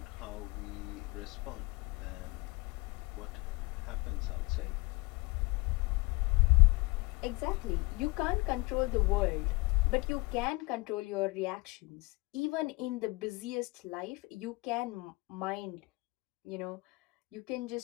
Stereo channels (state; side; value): quieter; right; 24.8 dB